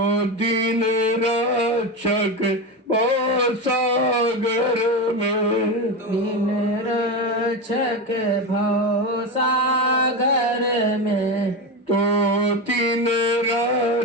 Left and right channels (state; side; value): normal; both; correlation 0.18